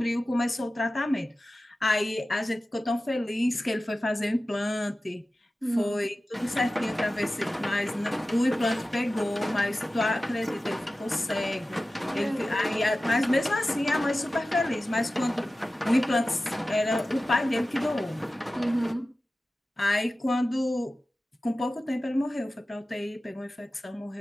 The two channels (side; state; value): both; normal; correlation 0.95